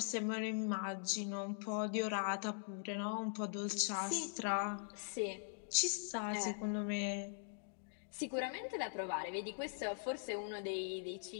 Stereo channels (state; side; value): silent; right; digital silence